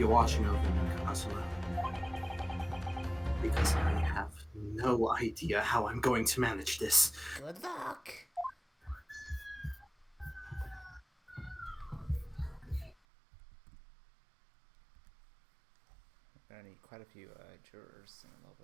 watching over me, Kazuma. because I have no idea how I'm going to manage this. Good luck. I need quite a few jurors in a little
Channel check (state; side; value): drops out; left; at 13.0 s